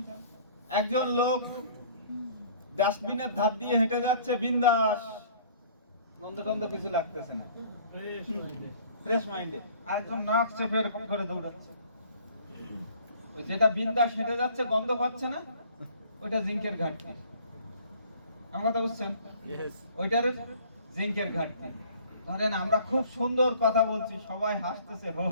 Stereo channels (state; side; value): inverted; both; correlation -0.53